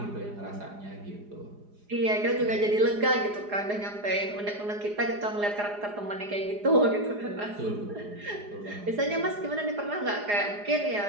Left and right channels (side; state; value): left; late; 4.9 ms